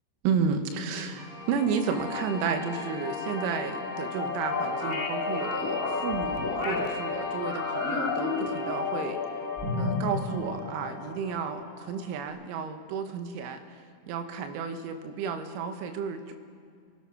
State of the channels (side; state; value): left; late; 28 ms